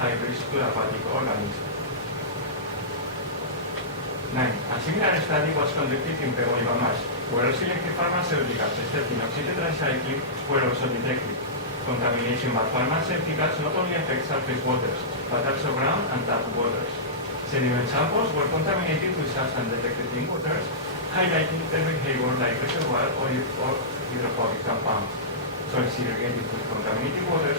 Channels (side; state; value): both; normal; correlation -0.17